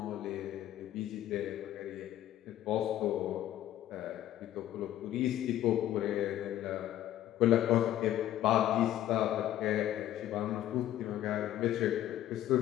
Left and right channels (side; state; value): right; quieter; 12.8 dB